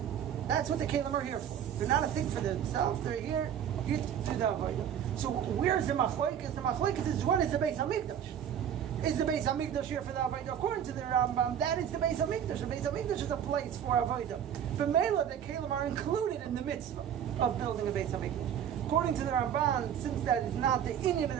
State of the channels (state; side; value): quieter; left; 9.2 dB